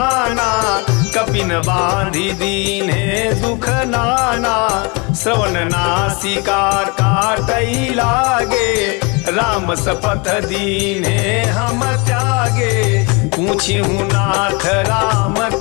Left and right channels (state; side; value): quieter; right; 29.8 dB